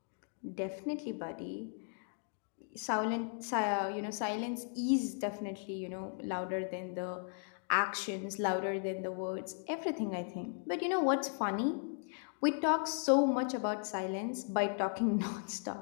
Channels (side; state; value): right; silent; 53 dB below the other